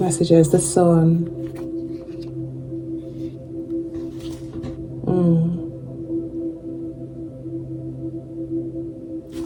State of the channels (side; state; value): both; identical; correlation 1.00